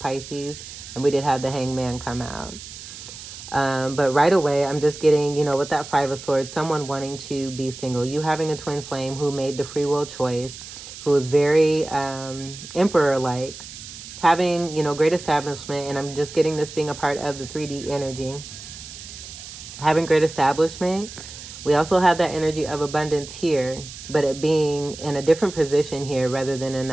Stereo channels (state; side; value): noise; right; hiss, 13 dB below the sound